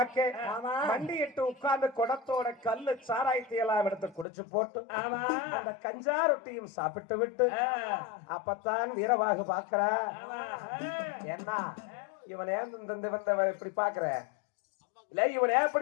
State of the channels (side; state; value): right; drops out; at 4.2 s